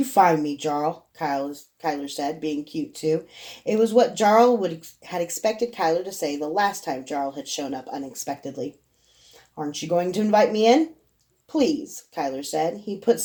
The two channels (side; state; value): both; identical; correlation 1.00